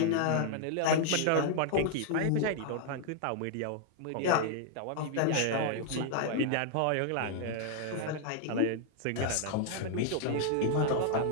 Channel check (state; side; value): different; both; correlation 0.00